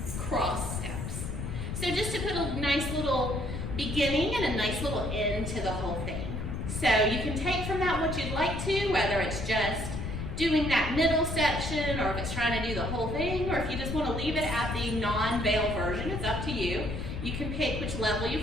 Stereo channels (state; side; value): noise; left; rumble, 5 dB below the sound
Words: cross steps. So just to put a nice little beginning and a nice little end to the whole thing. So you can take from that what you'd like to, whether it's just doing that middle section, or if it's trying to do the whole thing, or if you just want to leave it at the non-veil version, it's up to you. You can pick which level you